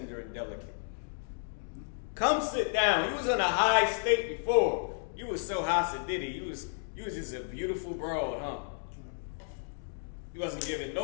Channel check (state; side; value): silent; right; digital silence